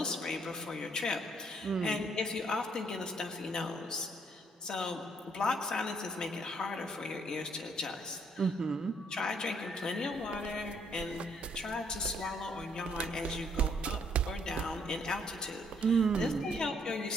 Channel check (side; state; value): both; normal; correlation 0.68